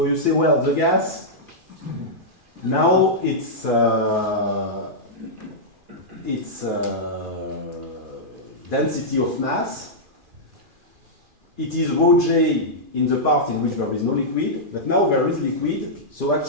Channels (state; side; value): late; left; 2.4 ms